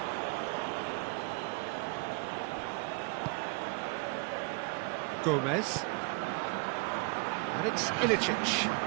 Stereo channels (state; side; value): quieter; left; 31.1 dB